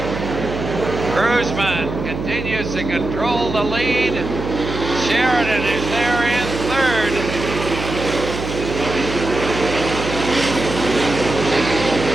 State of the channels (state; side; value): noise; right; hum, 6 dB below the sound